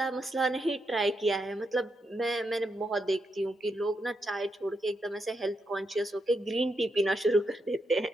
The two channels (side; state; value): both; normal; correlation 0.83